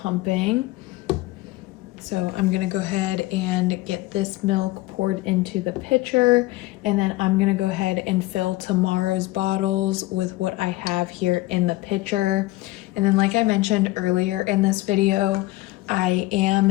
So I'm gonna go ahead and get this milk poured into the pitcher, and then I'm gonna go ahead and fill tomorrow's bottles with what I have here in the pitcher. And then like I mentioned earlier in this video, I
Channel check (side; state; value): right; quieter; 19.1 dB